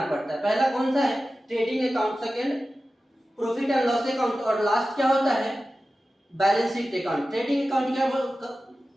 पड़ता है। पहला कौन सा है, trading account, second profit and loss account, और लास्ट क्या होता है, balance sheet account. Trading account क्या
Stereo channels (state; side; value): normal; both; correlation 0.94